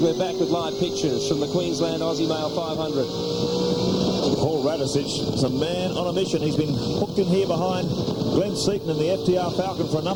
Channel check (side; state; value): both; identical; correlation 1.00